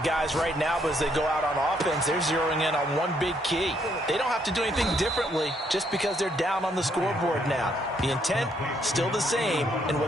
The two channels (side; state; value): both; normal; correlation 0.71